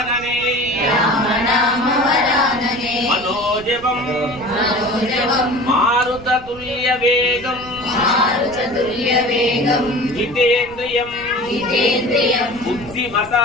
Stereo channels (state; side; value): noise; right; rumble, 19 dB below the sound